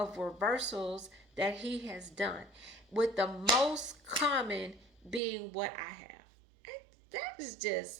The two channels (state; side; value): drops out; left; at 5.2 s